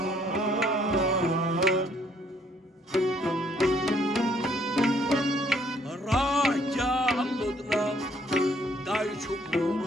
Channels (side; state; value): both; normal; correlation 0.66